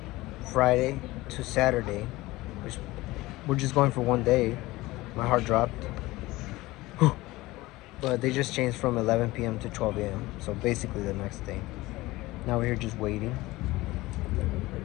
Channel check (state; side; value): quieter; right; 19.4 dB